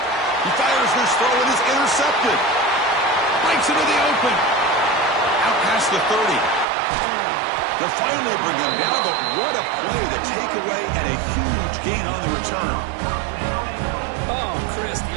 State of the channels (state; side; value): drops out; left; at 6.7 s